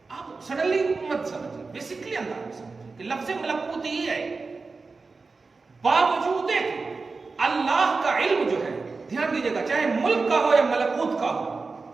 آپ سڈنلی مت سمجھیں، بیسکلی انداز میں سمجھیں کہ لفظ ملکوت ہی ہے. باوجود اللہ کا علم جو ہے، دھیان دیجیے گا، چاہے ملک کا ہو یا ملکوت کا ہو،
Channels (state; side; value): quieter; left; 4.1 dB